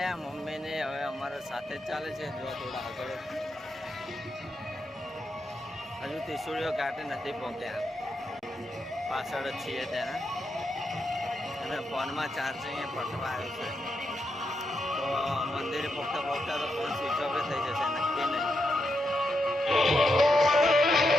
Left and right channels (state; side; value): normal; both; correlation 0.83